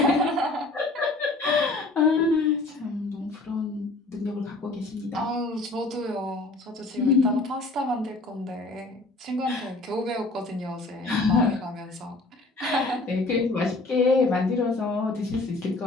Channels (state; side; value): quieter; right; 3.1 dB